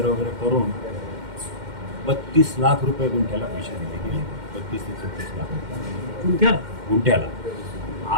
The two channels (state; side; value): late; left; 2.1 ms